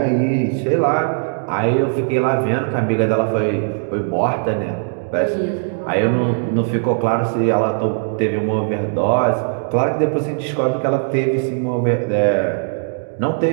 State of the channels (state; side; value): silent; left; digital silence